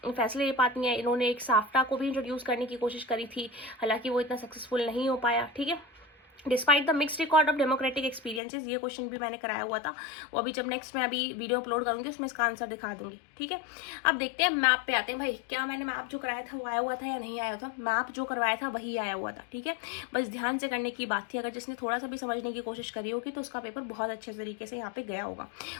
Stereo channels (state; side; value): drops out; right; at 8.4 s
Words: फैसले ले पाती हैं। इन्होंने एक साफ्टा को भी इंट्रोड्यूस करने की कोशिश करी थी, हालांकि वो इतना सक्सेसफुल नहीं हो पाया, ठीक है। Despite the mixed record of democratic experiences, ये क्वेश्चन भी मैंने कराया हुआ था, वो अभी जब नेक्स्ट मैं अभी वीडियो अपलोड करूंगी उसमें इसका आंसर दिखा दूंगी, ठीक है। अब देखते हैं मैप पे आते हैं। भाई क्या मैंने मैप जो कराया था वो आया हुआ था या नहीं आया था? मैप जो करवाया था वही आया हुआ था, ठीक है। बस ध्यान से करने की बात थी, अगर जिसने थोड़ा सा भी समझने की कोशिश करी होगी तो उसका पेपर बहुत अच्छे तरीके से यहाँ पे गया होगा।